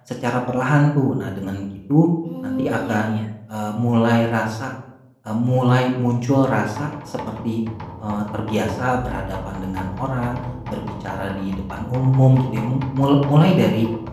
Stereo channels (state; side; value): identical; both; correlation 1.00